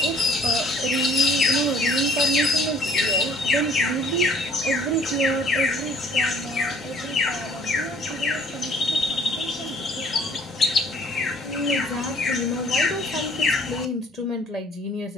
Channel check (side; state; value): both; normal; correlation 0.57